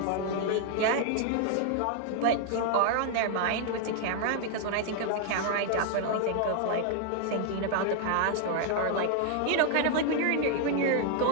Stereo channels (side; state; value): both; different; correlation 0.00